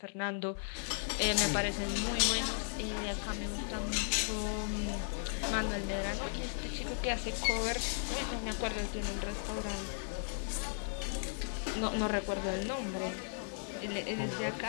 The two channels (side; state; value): right; silent; 54 dB below the other